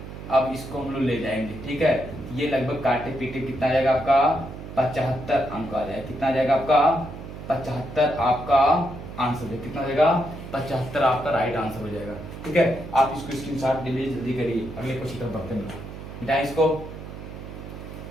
अब इसको हम लोग ले जाएंगे, ठीक है। ये लगभग काटे पीटे कितना आ जाएगा आपका 75 अंक आ जाएगा, कितना आ जाएगा आपका 75 आपका आंसर दे, कितना हो जाएगा 75 आपका राइट आंसर हो जाएगा। ठीक है, आप इसको स्क्रीनशॉट जल्दी जल्दी करिए, अगले क्वेश्चन तक बढ़ते हैं, मिटाएं इसको।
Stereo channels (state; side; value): noise; right; hum, 11 dB below the sound